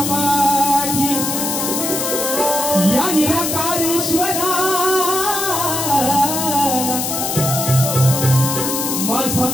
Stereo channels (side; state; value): left; noise; hiss, 2 dB below the sound